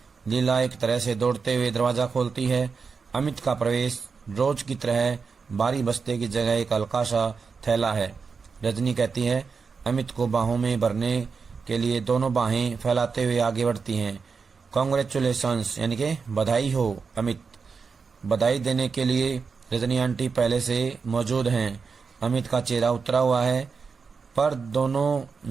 लीला एक तरह से दौड़ते हुए दरवाजा खोलती है। अमित का प्रवेश रोज की तरह बारी बस्ते की जगह एक हल्का सा थैला है। रजनी कहती है, अमित को बाहों में भरने के लिए दोनों बाहें फैलाते हुए आगे बढ़ती हैं। कॉन्ग्रेचुलेशंस यानी कि बधाई हो अमित। बधाई देने के लिए रजनी आंटी पहले से मौजूद हैं। अमित का चेहरा उतरा हुआ है, पर दोनों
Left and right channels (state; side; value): quieter; left; 5.2 dB